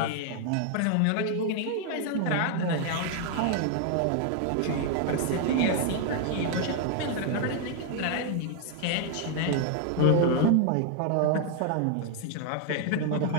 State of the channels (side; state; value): both; different; correlation 0.00